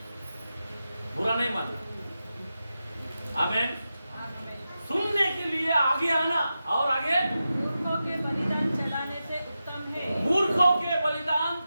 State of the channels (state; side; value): inverted; both; correlation -0.91